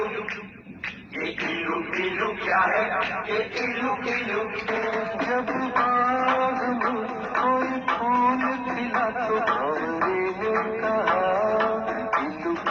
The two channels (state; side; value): identical; both; correlation 1.00